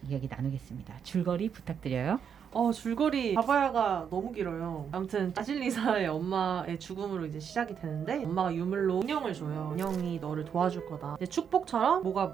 이야기 나누겠습니다. 줄거리 부탁드려요. 줄거리 바바야가 너무 길어요. 아무튼 바실리사의 엄마의 죽음으로 이제 시작이 되는데 엄마가 유물로 인형을 줘요. 인형이 너를 도와줄 거다. 이제 축복처럼 뭐가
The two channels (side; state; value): left; quieter; 7.6 dB